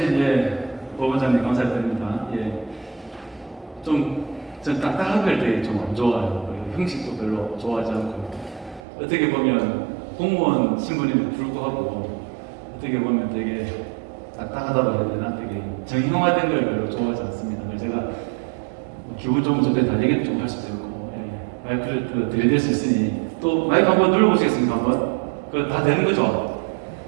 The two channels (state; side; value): drops out; left; at 8.8 s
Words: 보건장님 감사드립니다. 전 딱딱한 걸 되게 좀 안 좋아해요. 형식도 별로 좋아하지 않고, 어떻게 보면 공무원 신분임에도 불구하고 어떻게 보면 되게 딱딱하다고 해야 되나, 되게 정형화된 걸 별로 좋아하지 않습니다. 그래서 제가 기분 좋으면 저때 달리기를 좀 할 수도 있고, 마이크를 들이댈 수 있으니 또 마이크 한번 눌러보시겠습니까? 한번? 그거 다 되는 거죠?